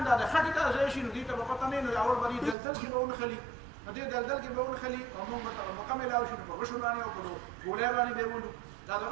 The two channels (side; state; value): left; drops out; at 2.6 s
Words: دا د خټې ته ځای شي نو دې ته به پته نه وي نو اول به دې دلدل کې به ونښلي نو دې دلدل کې به ونښلي او مونږ به ته موقع میلاو شي نو په غشو باندې او په ګولۍ باندې به یې ولو دا د